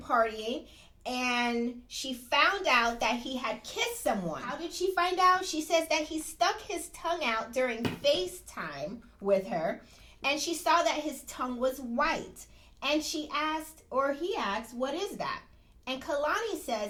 partying. And she found out that he had kissed someone. How did she find out? She says that he stuck his tongue out during FaceTime with her, and she saw that his tongue was white. And he asked, what is that? And Kalani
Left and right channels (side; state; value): both; identical; correlation 1.00